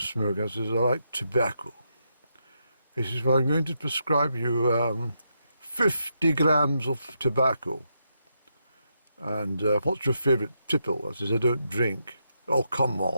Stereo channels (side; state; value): both; inverted; correlation -0.81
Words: I says, "I like tobacco." He says, "Well, I'm going to prescribe you 50 grams of tobacco. And what's your favourite tipple?" I says, "I don't drink." "Oh, come